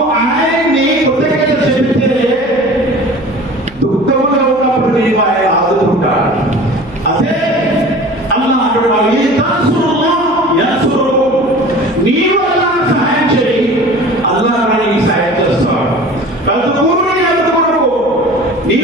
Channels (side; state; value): right; noise; hum, 24 dB below the sound